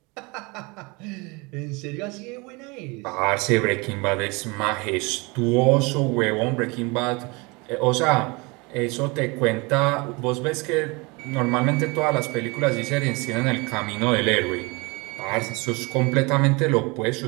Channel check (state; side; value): quieter; left; 27.1 dB